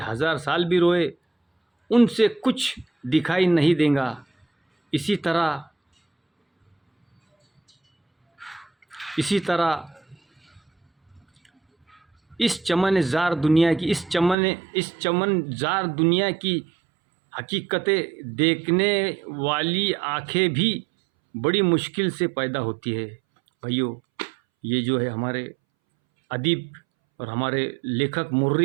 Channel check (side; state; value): left; drops out; at 14.4 s